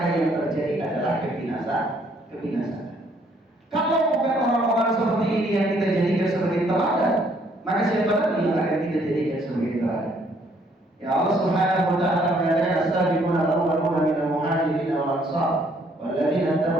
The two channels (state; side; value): normal; both; correlation 0.65